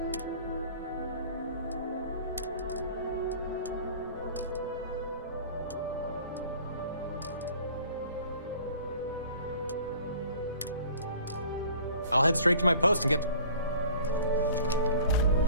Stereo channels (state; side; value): inverted; both; correlation -0.48